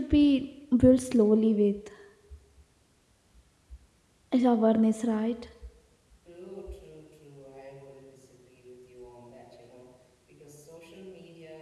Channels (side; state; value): both; identical; correlation 1.00